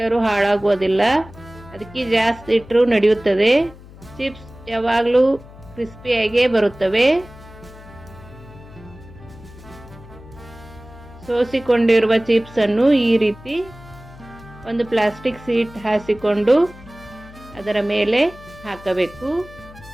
ಹಾಳಾಗುವುದಿಲ್ಲ. ಅದಕ್ಕೆ ಜಾಸ್ತಿ ಇಟ್ಟರೂ ನಡೆಯುತ್ತದೆ. ಚಿಪ್ಸ್ ಯಾವಾಗಲೂ ಕ್ರಿಸ್ಪಿಯಾಗೇ ಬರುತ್ತವೆ. ಸೋಸಿಕೊಂಡಿರುವ ಚಿಪ್ಸ್ ಅನ್ನು ಈ ರೀತಿ ಒಂದು ಪ್ಲಾಸ್ಟಿಕ್ ಶೀಟ್ ಹಾಸಿಕೊಂಡು ಅದರ ಮೇಲೆ ಹಾಕಬೇಕು.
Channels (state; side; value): noise; left; hum, 19 dB below the sound